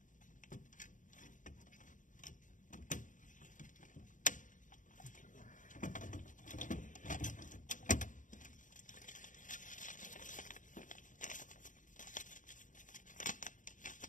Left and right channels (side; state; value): right; late; 0.37 ms